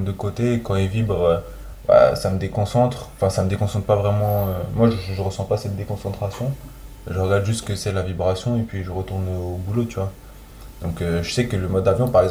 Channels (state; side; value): identical; both; correlation 1.00